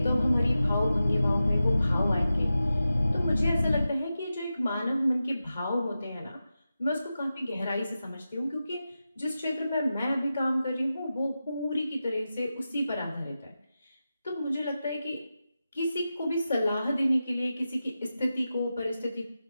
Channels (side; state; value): both; inverted; correlation -0.92